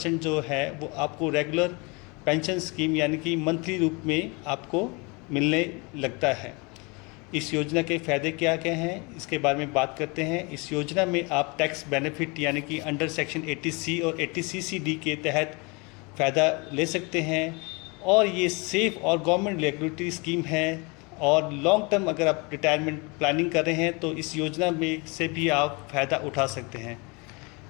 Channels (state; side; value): quieter; right; 28.9 dB